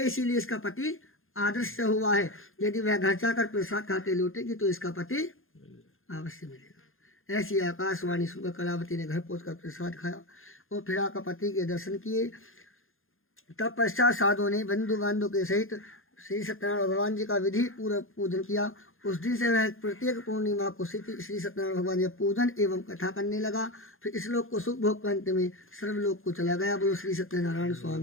इसीलिए इसका पति आदर्श हुआ है। यदि वह घर जाकर प्रसाद खा के लौटेगी तो इसका पति अवश्य मिलेगा। ऐसी आकाशवाणी सुनकर कलावती ने घर पहुंचकर प्रसाद खाया और फिर आकर पति के दर्शन किए। तब पश्चात साधुओं ने बंधु बांधव के सहित श्री सत्यनारायण भगवान जी का विधि पूर्वक पूजन किया। उस दिन से वह प्रत्येक पूर्णिमा को श्री सत्यनारायण भगवान जी का पूजन एवं कथा करने लगा। फिर इस लोक को सुख भोग अंत में सर्वलोक को चला गया। बोलो श्री सत्यनारायण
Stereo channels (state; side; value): late; right; 0.60 ms